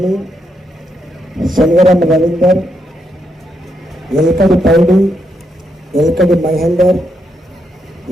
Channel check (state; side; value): normal; both; correlation 0.79